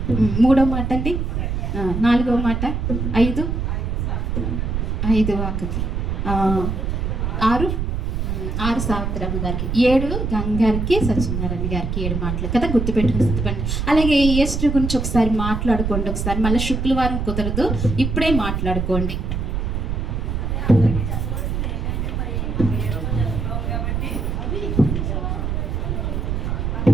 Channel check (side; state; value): right; noise; rumble, 1 dB below the sound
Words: మూడవ మాట అండి, నాలుగవ మాట, ఐదు వాకకి, ఆరు సావిత్రమ్మ గారికి, 7 గంగారికి, సత్యనారాయణ గారికి 7 మాటలు కదా, గుర్తుపెట్టుకుని స్థితిపండి. అలాగే ఈస్టర్ గురించి ఒకసారి మాట్లాడుకోండి. ఒకసారి మళ్ళీ శుక్రవారం కుదరదు, ఇప్పుడే మాట్లాడుకోండి.